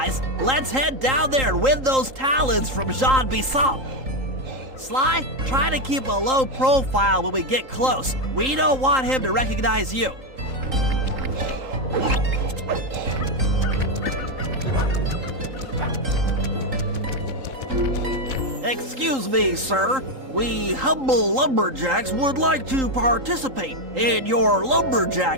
let's head down there and win those talons from Jean Basson. Sly, try to keep a low profile when we get close. We don't want him to recognize you. Excuse me, sir. We humble lumberjacks would like to participate in your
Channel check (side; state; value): left; late; 3.8 ms